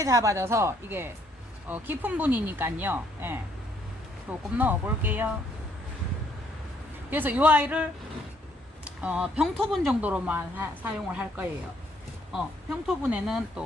잡아져서 이게 깊은 분이니까요. 예. 조금 넣어 볼게요. 그래서 이 아이를 평토분 정도로만 사용을 할 거예요. 평토분에는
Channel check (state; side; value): normal; both; correlation 0.67